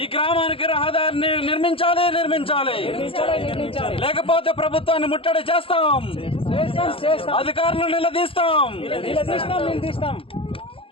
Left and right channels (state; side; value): late; right; 0.27 ms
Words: ఈ గ్రామానికి రహదారిని నిర్మించాలి. లేకపోతే ప్రభుత్వాన్ని ముట్టడి చేస్తాం, అధికారులను నిలదీస్తాం.